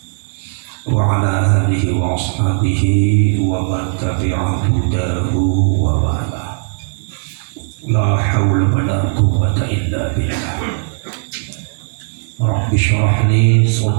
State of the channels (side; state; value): left; silent; 61 dB below the other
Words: wa ala alihi wa ashabihi wa man tabi'a hudahu wa wala. La hawla wa la quwwata illa billah. Rabbi shrah li